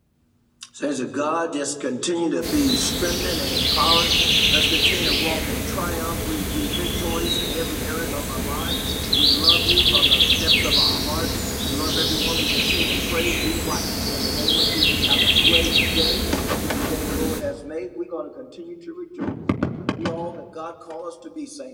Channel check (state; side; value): identical; both; correlation 1.00